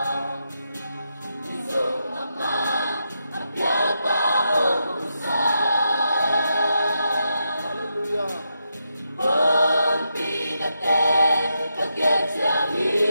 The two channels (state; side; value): inverted; both; correlation -0.84